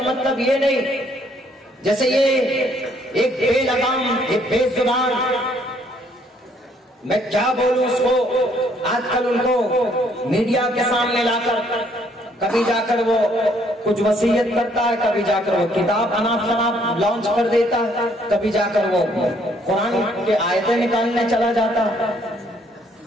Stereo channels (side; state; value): both; normal; correlation 0.66